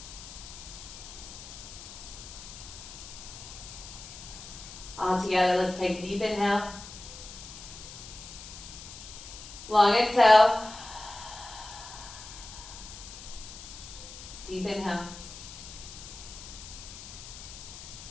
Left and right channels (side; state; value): left; noise; hiss, 13 dB below the sound